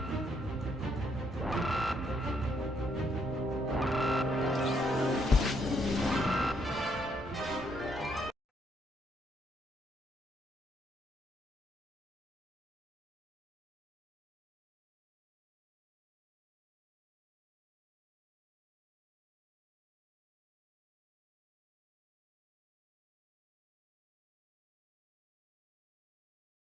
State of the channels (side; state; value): both; normal; correlation 0.73